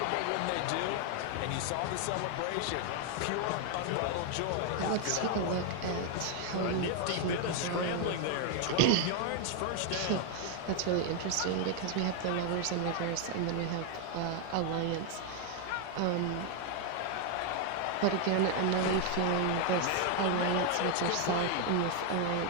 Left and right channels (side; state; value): both; different; correlation 0.00